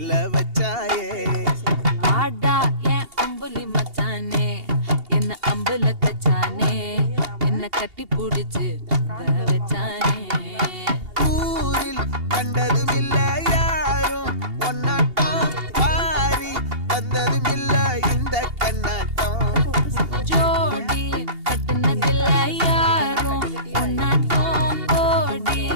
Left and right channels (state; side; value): late; left; 2.8 ms